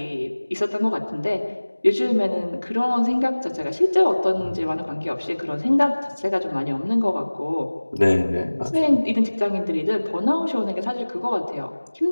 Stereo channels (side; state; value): both; inverted; correlation -1.00